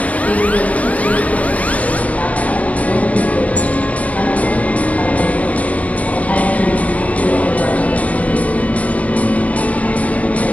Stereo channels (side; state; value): right; late; 0.067 ms